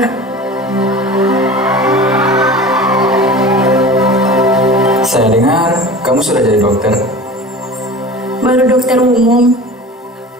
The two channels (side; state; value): both; normal; correlation 0.37